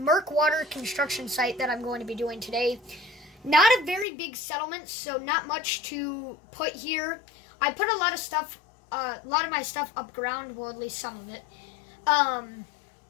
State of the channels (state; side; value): drops out; right; at 4.0 s